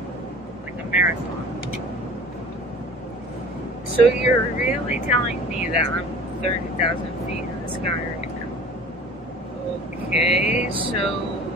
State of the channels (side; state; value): both; normal; correlation 0.43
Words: like a marathon. So you're really telling me that I'm 30,000 feet in the sky right now? Okay, so